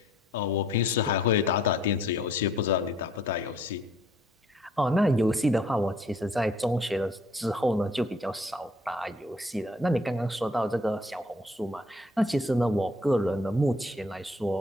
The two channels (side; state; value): both; normal; correlation 0.60